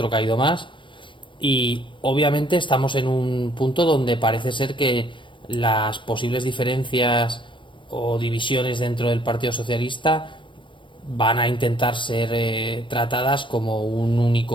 caído más, y obviamente estamos en un punto donde parece ser que las posibles diferencias o divisiones dentro del Partido Socialista van a intentar ser tratadas como un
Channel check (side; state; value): right; late; 0.24 ms